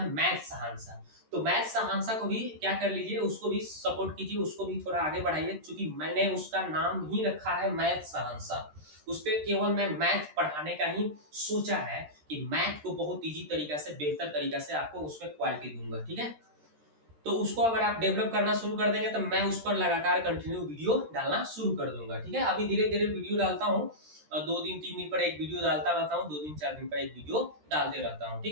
मैथ सहांसा, तो मैथ सहांसा को भी क्या कर लीजिए, उसको भी सपोर्ट कीजिए, उसको भी थोड़ा आगे बढ़ाइए, क्योंकि मैंने उसका नाम ही रखा है मैथ सहांसा। उस पे केवल मैं मैथ पढ़ाने का ही सोचा है कि मैथ को बहुत इजी तरीका से, बेहतर तरीका से आपको उसमें क्वालिटी दूंगा, ठीक है। तो उसको अगर आप डेवलप करना शुरू कर देंगे तो मैं उस पर लगातार कंटिन्यू वीडियो डालना शुरू कर दूंगा, ठीक है। अभी धीरे धीरे वीडियो डालता हूँ, 2 दिन 3 दिन पर एक वीडियो डालता रहता हूँ, 2 दिन 4 दिन पर एक वीडियो डालते रहता हूँ,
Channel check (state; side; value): late; left; 13 ms